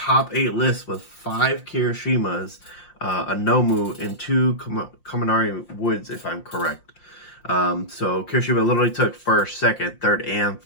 8 list with 5 Kirishimas, a Nomu, and 2 Kaminari Woods, if I'm correct. So Kirishima literally took 1st, 2nd, 3rd, and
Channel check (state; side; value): late; right; 5.8 ms